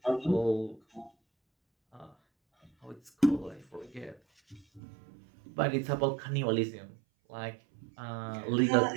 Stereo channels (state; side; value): drops out; left; at 4.8 s